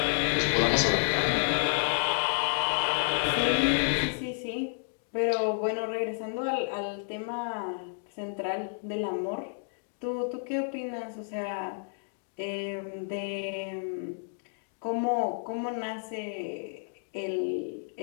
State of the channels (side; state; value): right; silent; digital silence